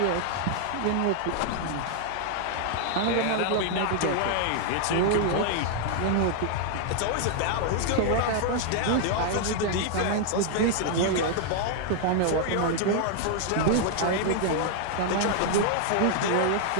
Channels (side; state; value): both; different; correlation 0.00